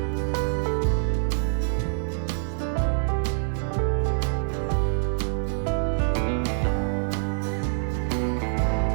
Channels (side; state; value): left; silent; 55 dB below the other